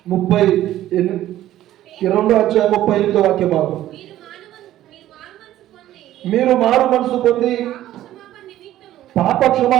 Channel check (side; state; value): left; quieter; 13.5 dB